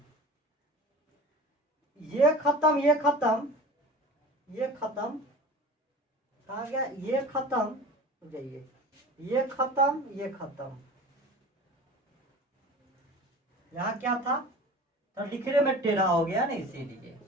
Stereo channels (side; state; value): both; normal; correlation 0.39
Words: ये खत्म कहा गया, ये खत्म जाइए, ये खत्म यहाँ क्या था तो लिखने में टेढ़ा हो गया ना, इसीलिए